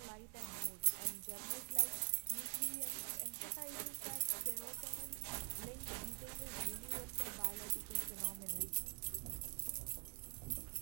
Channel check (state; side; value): quieter; left; 36.1 dB